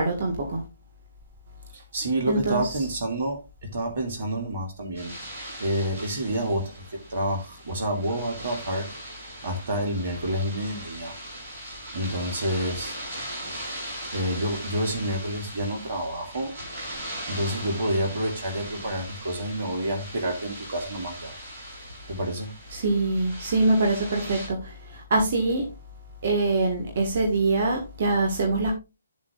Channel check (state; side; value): inverted; both; correlation -0.66